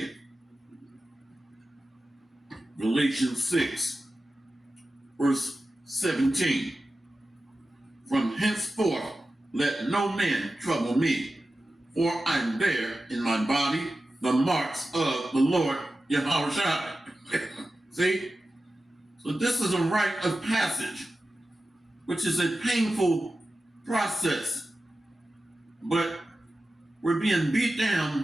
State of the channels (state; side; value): normal; both; correlation 0.94